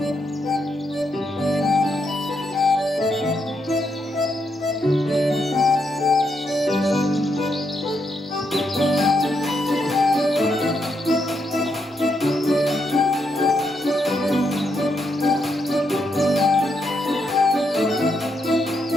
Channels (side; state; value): both; normal; correlation 0.80